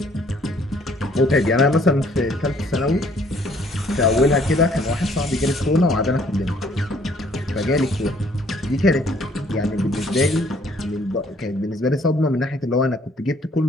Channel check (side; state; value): both; normal; correlation 0.62